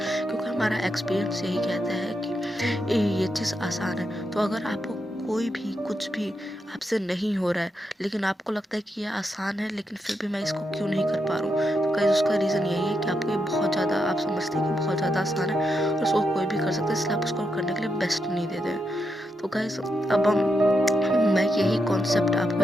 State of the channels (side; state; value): both; normal; correlation 0.83